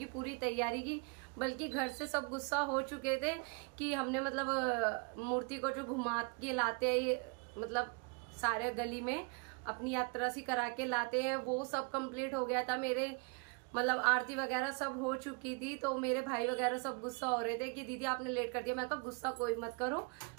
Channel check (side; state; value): left; quieter; 34.0 dB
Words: पूरी तैयारी की, बल्कि घर से सब गुस्सा हो चुके थे कि हमने मतलब मूर्ति को जो घुमा के लाते हैं, मतलब सारे गली में अपनी यात्रा सी करा के लाते हैं, वो सब कंप्लीट हो गया था। मेरे मतलब आरती वगैरह सब हो चुकी थी, तो मेरे भाई वगैरह सब गुस्सा हो रहे थे कि दीदी आपने लेट कर दिया। मैं कहा गुस्सा कोई मत करो,